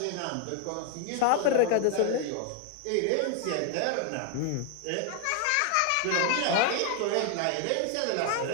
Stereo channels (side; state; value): both; different; correlation 0.00